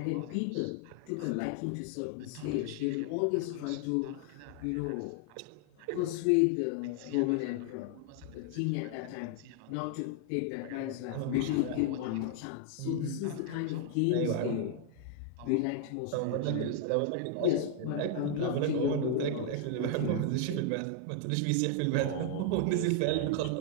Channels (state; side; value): different; both; correlation 0.00